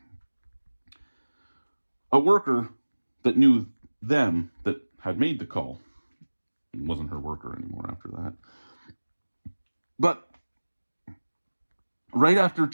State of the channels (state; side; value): inverted; both; correlation -1.00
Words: a worker that knew them that had made the call. It wasn't her worker anymore after that. But right after